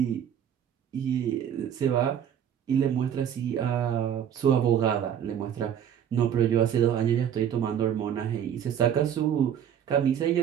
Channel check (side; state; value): left; quieter; 9.3 dB